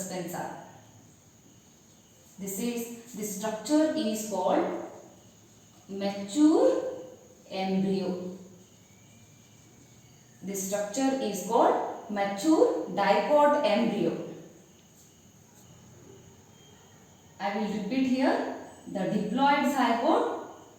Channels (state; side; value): identical; both; correlation 1.00